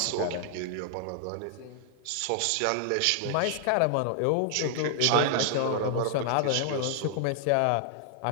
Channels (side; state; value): both; different; correlation 0.00